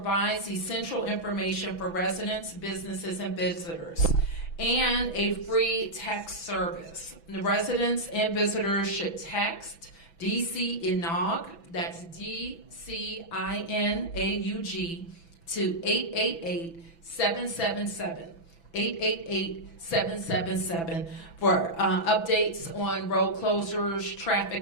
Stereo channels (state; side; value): late; right; 6.0 ms